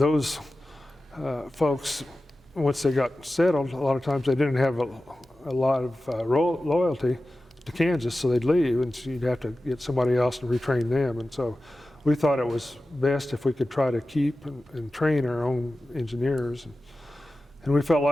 those folks, once they got settled, a lot of times they didn't have a lot of loyalty to Kansas, so they'd leave, and so you'd have to get somebody else to retrain them. And so we thought it was best if we could try to keep and train our own engineers. And we felt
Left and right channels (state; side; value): normal; both; correlation 0.94